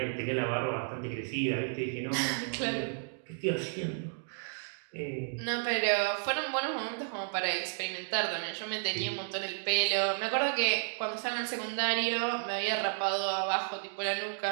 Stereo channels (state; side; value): silent; left; digital silence